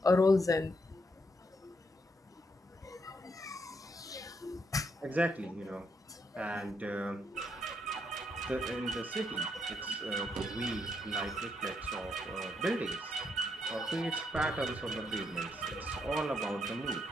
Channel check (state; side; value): normal; both; correlation 0.77